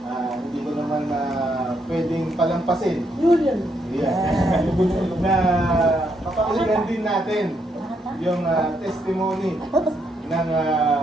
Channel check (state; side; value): normal; both; correlation 0.76